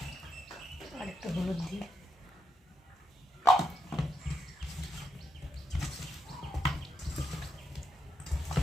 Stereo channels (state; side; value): normal; both; correlation 0.80